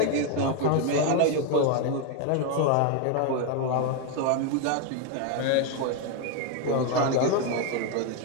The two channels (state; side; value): different; both; correlation 0.01